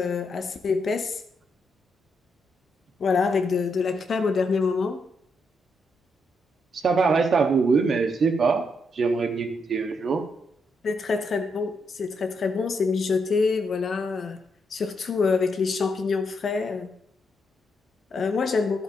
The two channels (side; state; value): both; normal; correlation 0.79